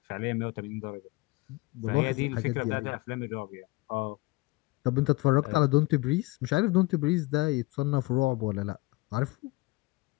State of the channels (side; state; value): right; quieter; 22.2 dB